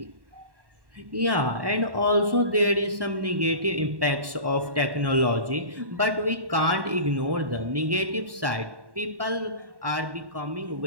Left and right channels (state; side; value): late; left; 1.1 ms